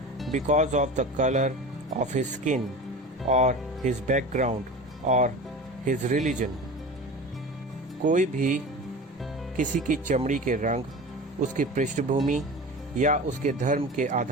because of the color of his skin or his background or his religion. कोई भी किसी की चमड़ी के रंग, उसकी पृष्ठभूमि या उसके धर्म के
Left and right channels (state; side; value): normal; both; correlation 0.33